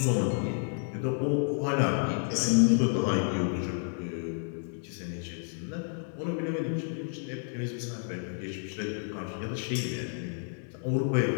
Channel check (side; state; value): right; silent; 57 dB below the other